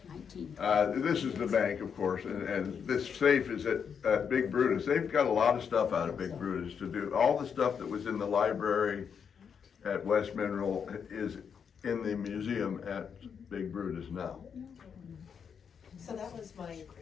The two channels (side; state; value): right; quieter; 7.0 dB